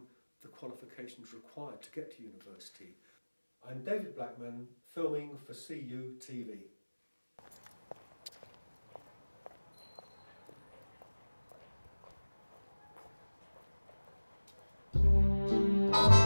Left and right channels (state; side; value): inverted; both; correlation -1.00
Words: the qualifications required to get to university. I'm David Blackman, filming for CU TV.